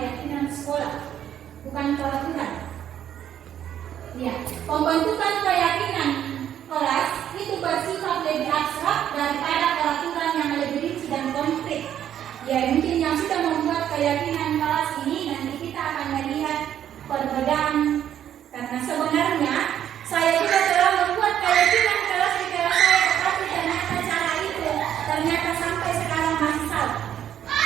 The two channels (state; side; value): quieter; left; 10.3 dB